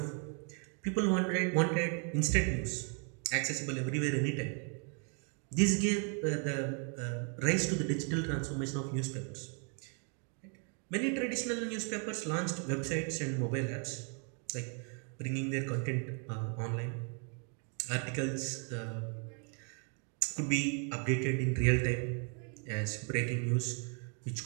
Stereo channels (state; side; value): quieter; left; 39.9 dB